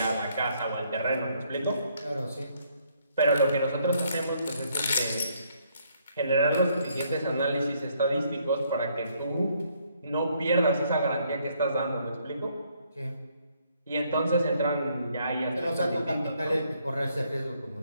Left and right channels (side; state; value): both; inverted; correlation -0.69